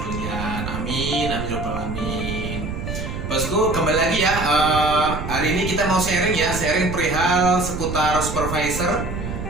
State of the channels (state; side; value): noise; right; rumble, 6 dB below the sound